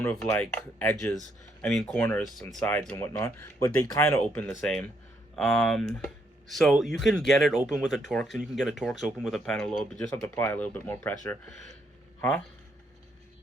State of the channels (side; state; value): both; normal; correlation 0.74